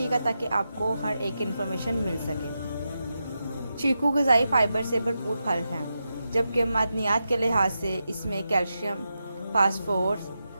ताकि आपको हर एक इन्फॉर्मेशन मिल सके। चीकू ग़िज़ाई फाइबर से भरपूर फल हैं, जबकि मादनियात के लिहाज से इसमें कैल्शियम, फास्फोरस,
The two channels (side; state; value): both; inverted; correlation -0.88